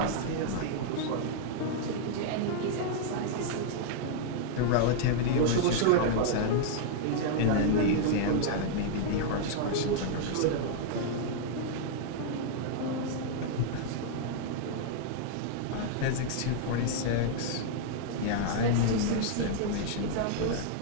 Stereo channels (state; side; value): different; both; correlation -0.01